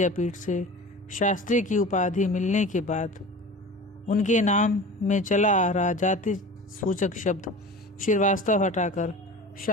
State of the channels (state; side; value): normal; both; correlation 0.36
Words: से शास्त्री की उपाधि मिलने के बाद उनके नाम में चला आ रहा जाति सूचक शब्द श्रीवास्तव हटाकर